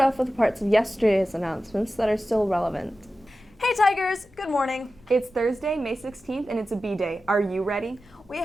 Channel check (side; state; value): left; noise; rumble, 27 dB below the sound